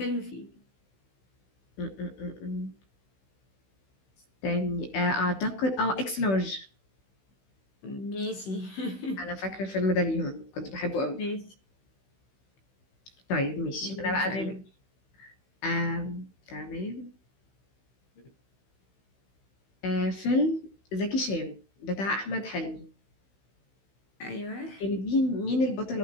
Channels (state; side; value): late; right; 16 ms